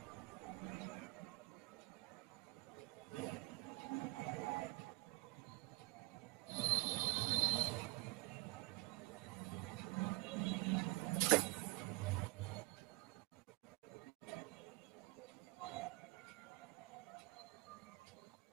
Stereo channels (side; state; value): left; quieter; 21.4 dB